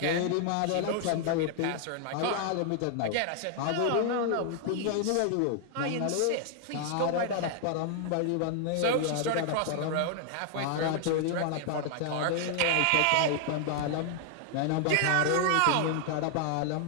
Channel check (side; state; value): both; different; correlation 0.00